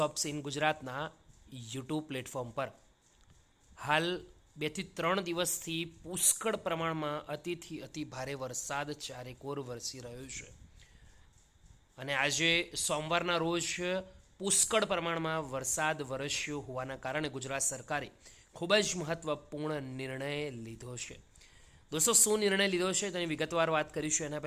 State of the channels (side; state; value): both; identical; correlation 1.00